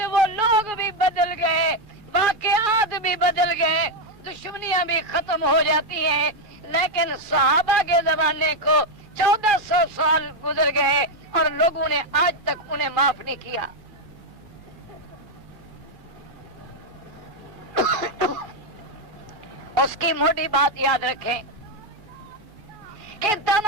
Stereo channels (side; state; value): left; late; 2.3 ms